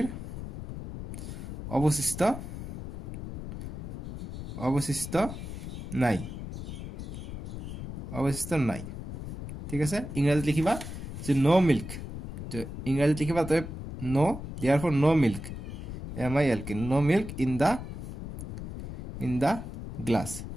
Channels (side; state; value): left; noise; rumble, 8 dB below the sound